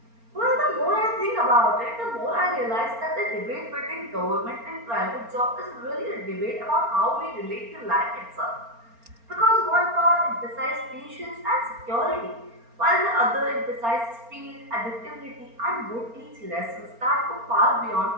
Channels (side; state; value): left; late; 4.3 ms